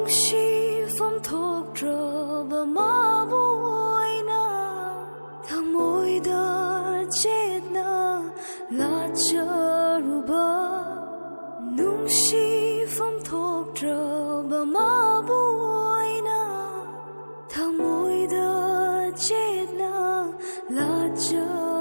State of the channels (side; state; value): both; inverted; correlation -1.00